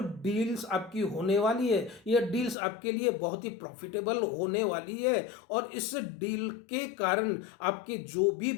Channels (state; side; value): drops out; right; at 2.6 s